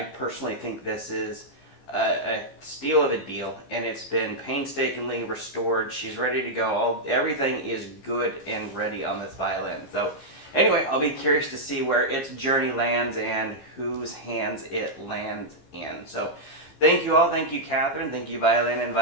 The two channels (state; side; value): late; right; 15 ms